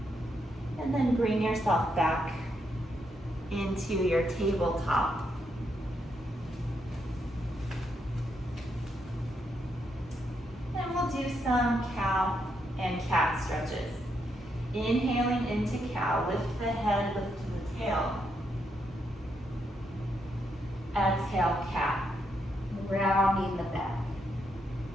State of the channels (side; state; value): both; normal; correlation 0.79